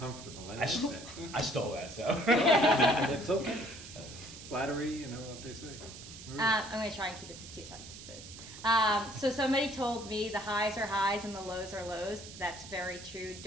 I like that. I stole that, so. It's okay. flattery, you know what they say. Maria? I'm going to try and keep it to 2 sentences. So somebody told me the highs are highs and the lows are lows. That's very true.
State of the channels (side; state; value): right; noise; hiss, 14 dB below the sound